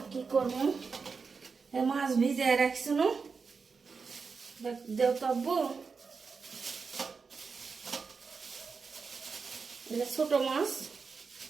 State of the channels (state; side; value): quieter; left; 5.1 dB